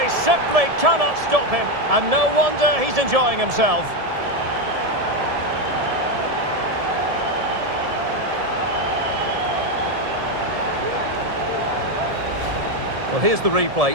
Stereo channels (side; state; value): left; late; 1.7 ms